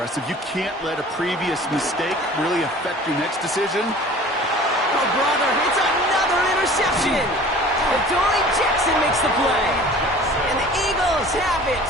You can't let a previous mistake really affect your next decision. Oh, brother, it's another interception. Adoree Jackson makes the play. And the Eagles have it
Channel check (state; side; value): normal; both; correlation 0.45